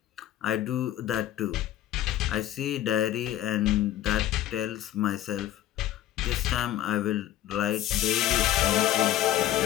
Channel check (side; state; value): right; quieter; 13.0 dB